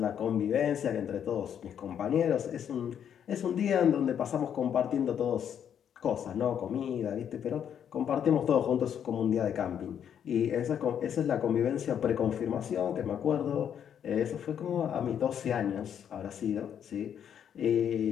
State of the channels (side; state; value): right; quieter; 8.8 dB